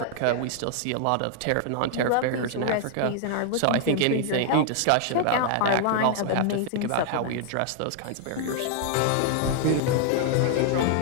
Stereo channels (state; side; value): different; both; correlation -0.01